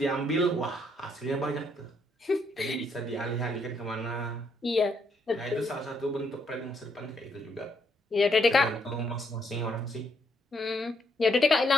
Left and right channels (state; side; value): normal; both; correlation 0.73